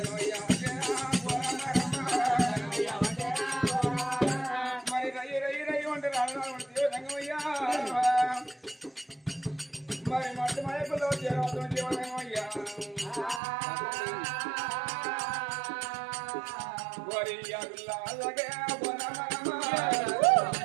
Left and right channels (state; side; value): drops out; left; at 13.4 s